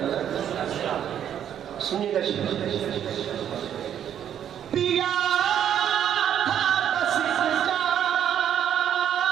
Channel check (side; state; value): left; quieter; 9.7 dB